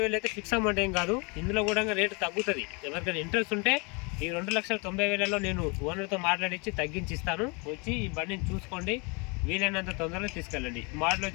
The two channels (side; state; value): right; quieter; 31.1 dB